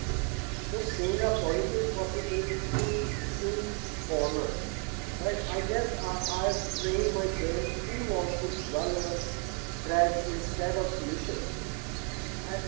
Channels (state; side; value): quieter; left; 34.3 dB